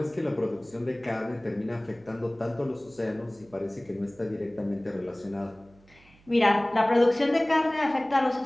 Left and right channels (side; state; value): right; noise; hum, 28 dB below the sound